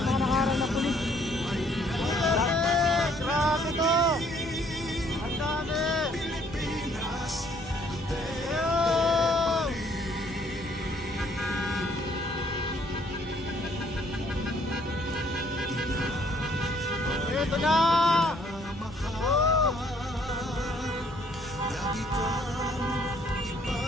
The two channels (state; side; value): normal; both; correlation 0.64